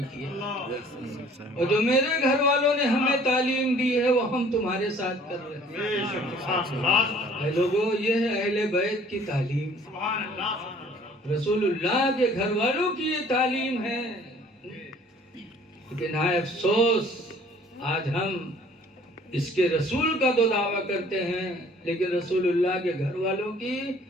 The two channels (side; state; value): both; normal; correlation 0.54